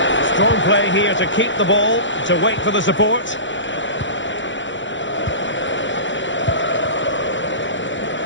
Strong play here to keep the ball, to wait for the support.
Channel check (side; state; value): right; late; 0.54 ms